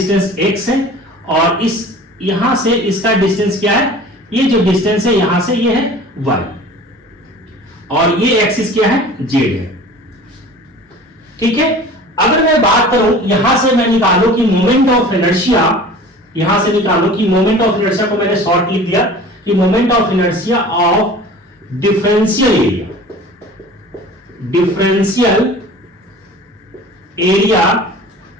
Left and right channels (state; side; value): normal; both; correlation 0.42